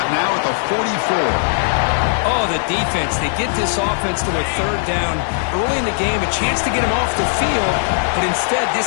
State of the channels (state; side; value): silent; right; digital silence